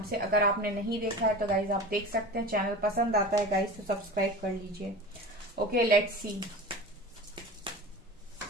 से। अगर आपने नहीं देखा है तो गाइस आप देख सकते हैं। चैनल पसंद आता है गाइस तो सब्सक्राइब कर लीजिए। Okay, let's see.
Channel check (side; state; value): both; normal; correlation 0.33